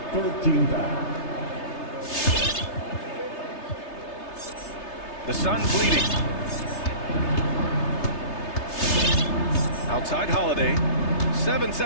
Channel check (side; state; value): right; late; 3.3 ms